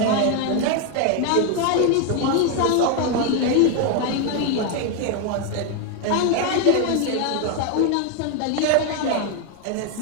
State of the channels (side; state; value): both; different; correlation 0.01